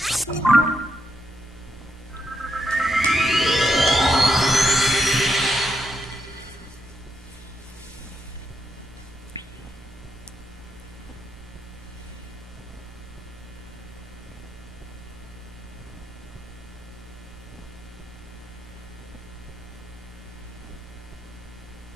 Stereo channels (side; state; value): both; normal; correlation 0.81